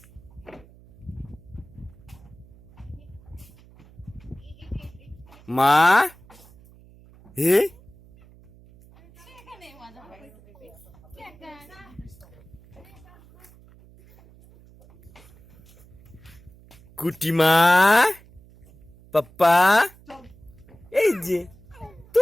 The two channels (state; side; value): noise; right; hum, 24 dB below the sound